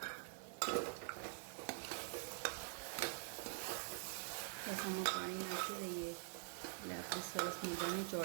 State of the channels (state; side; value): silent; left; digital silence